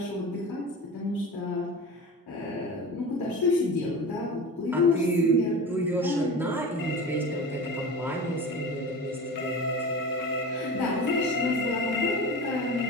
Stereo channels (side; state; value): both; normal; correlation 0.32